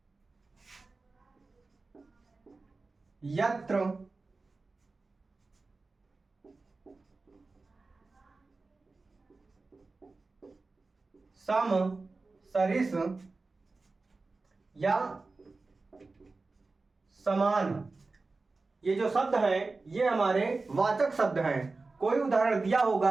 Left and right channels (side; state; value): left; quieter; 3.7 dB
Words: यत्र, सम, सरिस या समान। ये जो शब्द हैं ये हमारे वाचक शब्द हैं। कोई उदाहरण दिया